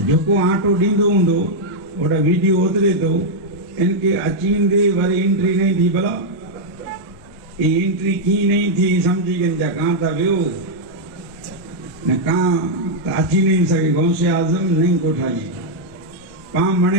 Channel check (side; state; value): both; normal; correlation -0.03